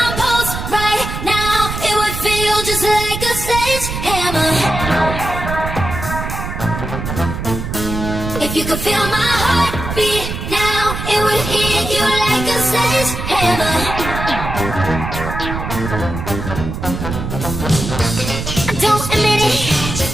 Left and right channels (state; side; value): noise; right; rumble, 6 dB below the sound